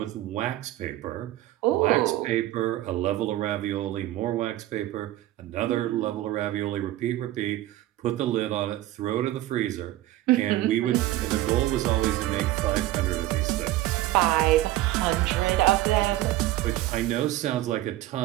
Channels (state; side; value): quieter; left; 15.3 dB